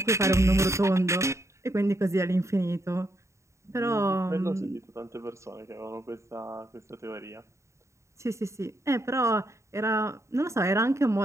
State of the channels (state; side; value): late; left; 0.14 ms